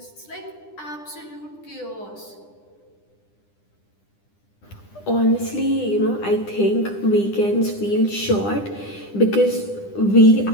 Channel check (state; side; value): late; right; 9.9 ms